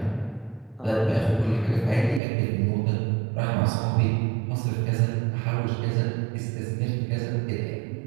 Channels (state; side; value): drops out; left; at 2.2 s